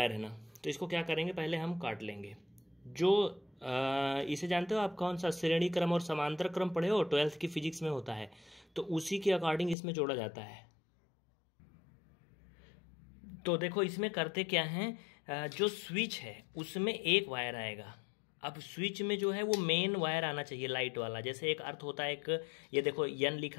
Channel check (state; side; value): drops out; right; at 9.8 s